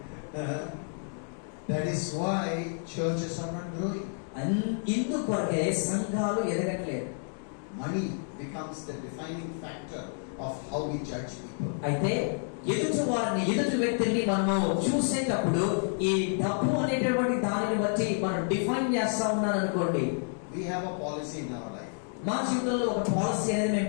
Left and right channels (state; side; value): silent; right; 58 dB below the other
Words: That is why churches are not growing. ఇందుకొరకే సంఘాలు ఎదగట్లేదు. money becomes the defining factor of how we judge people. అయితే ఎదుటి వ్యక్తిని మనము చూసేటప్పుడు ఈ డబ్బు అనేటటువంటి దానిని బట్టి మనం డిఫైన్ చేస్తా ఉన్నాను అనుకోండి. We have a policy in our life. మా జీవితంలో ఒక పాలసీ అనేది